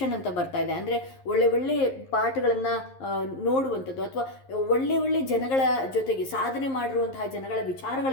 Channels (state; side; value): late; right; 11 ms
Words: ಅಂತ ಬರ್ತಾ ಇದೆ. ಅಂದರೆ ಒಳ್ಳೆ ಪಾಠಗಳನ್ನು ನೋಡುವಂಥದ್ದು ಅಥವಾ ಒಳ್ಳೆ ಜನಗಳ ಜೊತೆಗೆ ಸಾಧನೆ ಮಾಡಿರುವಂತಹ ಜನಗಳ